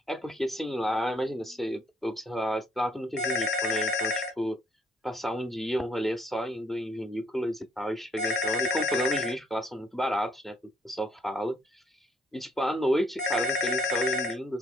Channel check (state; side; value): normal; both; correlation 0.67